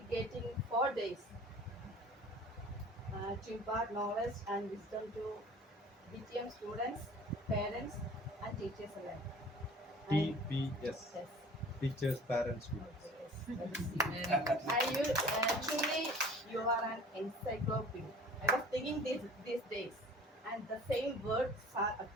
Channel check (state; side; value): normal; both; correlation 0.46